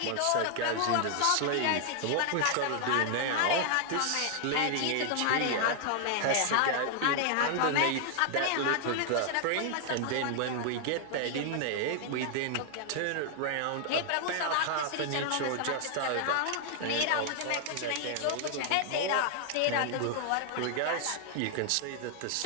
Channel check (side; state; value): both; different; correlation 0.00